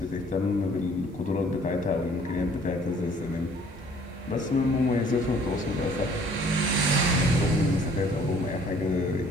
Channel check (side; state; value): both; normal; correlation 0.57